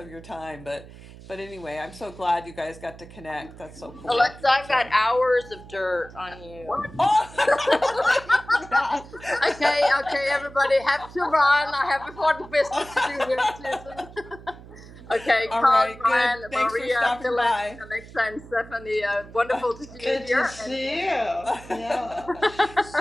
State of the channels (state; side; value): noise; right; hum, 18 dB below the sound